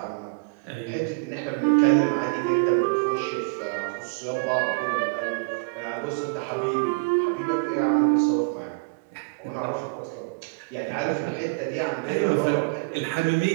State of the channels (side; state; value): left; quieter; 32.6 dB